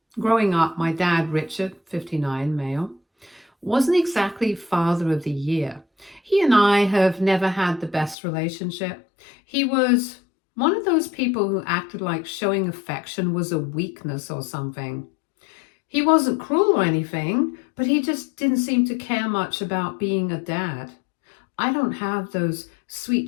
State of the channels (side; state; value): right; drops out; at 8.2 s